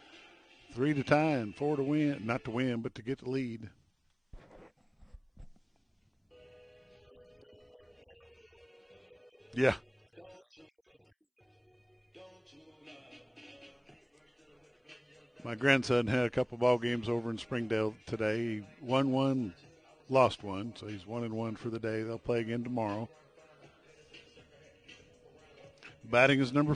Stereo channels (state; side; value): identical; both; correlation 1.00